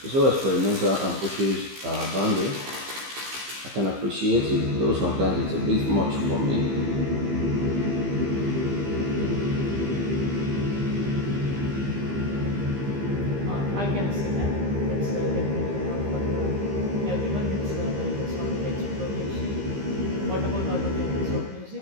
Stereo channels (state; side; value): late; left; 15 ms